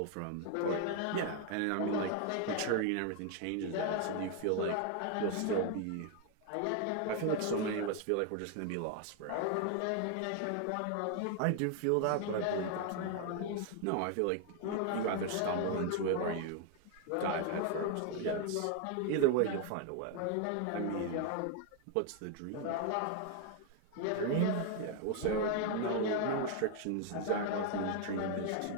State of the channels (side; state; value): both; different; correlation 0.01